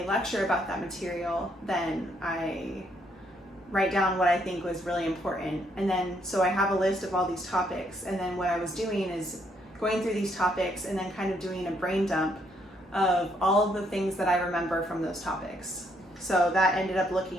lecture about that material, then I write down what I think was really important. And then so I have a list of all these topics, and then what I was doing is going through these topics and then kind of doing a brain dump of all of the things that I remember from those topics. So that ended up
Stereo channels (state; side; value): normal; both; correlation 0.72